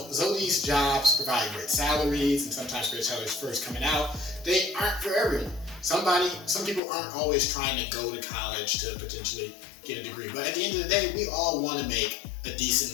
these jobs provide great salaries, and sometimes great salaries first coming out. They aren't for everyone. Some people aren't always trying to go to college to potentially get a degree. But at the end of the day, we all want to make a decent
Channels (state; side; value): drops out; right; at 6.8 s